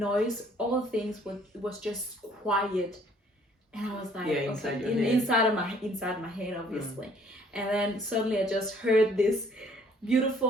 all things was just quiet, and I was like, inside my head obviously. And then suddenly I just heard this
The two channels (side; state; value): both; normal; correlation 0.59